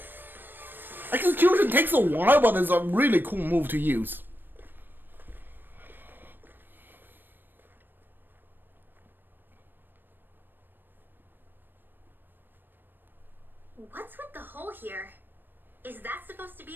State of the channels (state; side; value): late; left; 0.094 ms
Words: Execution takes a while, but it's a really cool move to use. What's with the hole here? Is that supposed to